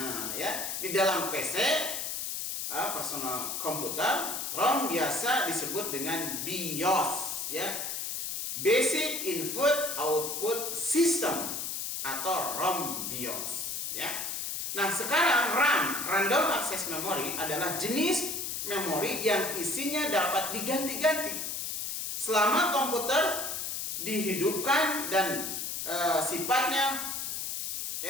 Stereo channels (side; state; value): left; noise; hiss, 3 dB below the sound